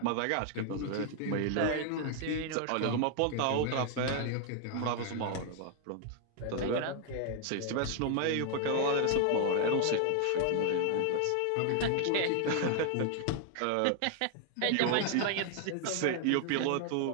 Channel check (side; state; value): both; different; correlation 0.00